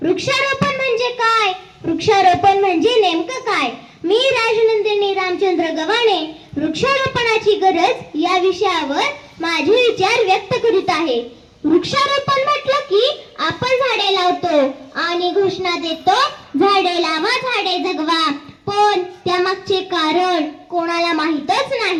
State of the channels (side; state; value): both; identical; correlation 1.00